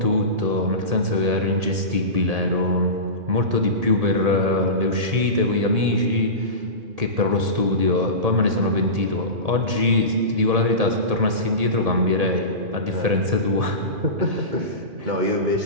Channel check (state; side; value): late; left; 1.8 ms